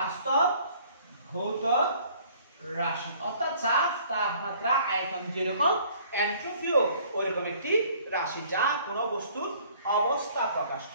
অর্থাৎ চাপ তাপমাত্রা আয়তন যেরকম এন্ট্রপিও ওইরকম একটি রাশি যা কোনো বস্তুর অবস্থা প্রকাশ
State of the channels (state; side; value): inverted; both; correlation -0.57